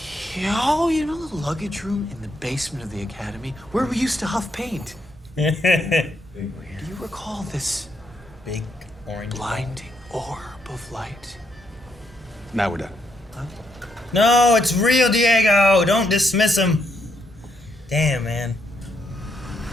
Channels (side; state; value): both; normal; correlation 0.77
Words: Yo, you know the luggage room in the basement of the academy where we used to huff paint? Do you recall this Big orange. blinding orb of light? Now we're done. No, it's real, Diego. Don't dismiss him. Damn, man.